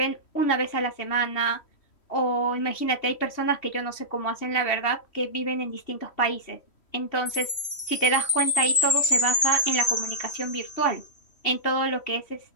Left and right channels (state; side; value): late; right; 3.1 ms